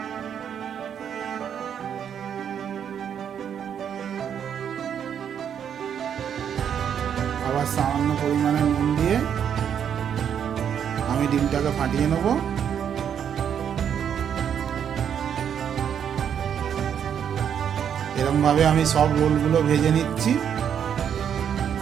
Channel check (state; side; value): quieter; left; 8.4 dB